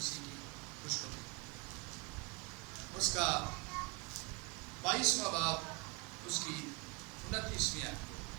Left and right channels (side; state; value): left; quieter; 28.3 dB